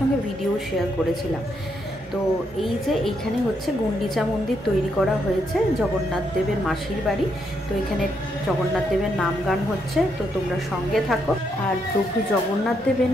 ভিডিও শেয়ার করেছিলাম। তো এই যে এইখানে হচ্ছে গুন্ডিচা মন্দির তৈরি করা হয়েছে জগন্নাথ দেবের মাসির বাড়ি। তো এখানে জগন্নাথ দেবের নাম গান হচ্ছে, তো তোমরা সঙ্গে থাকো। আর প্রভু জগন্নাথ দেবের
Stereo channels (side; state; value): both; normal; correlation 0.77